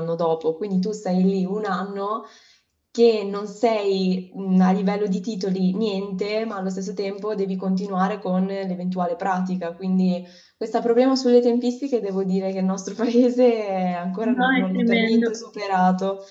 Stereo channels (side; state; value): both; identical; correlation 1.00